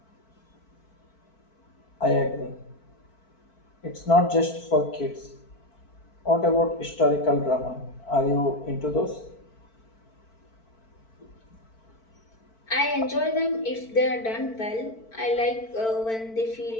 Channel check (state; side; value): late; right; 4.5 ms